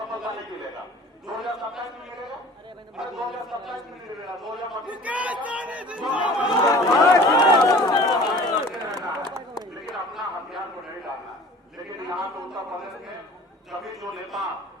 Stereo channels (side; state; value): both; normal; correlation 0.46